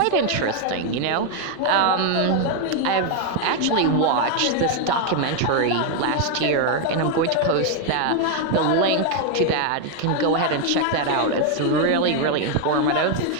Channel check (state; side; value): different; both; correlation 0.01